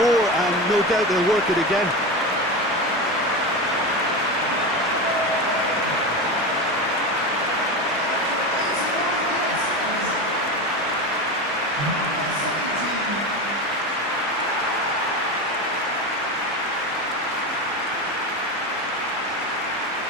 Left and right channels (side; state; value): both; normal; correlation 0.21